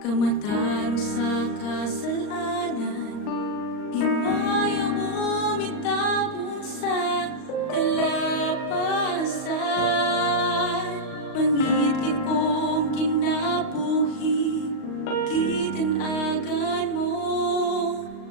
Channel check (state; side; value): late; right; 39 ms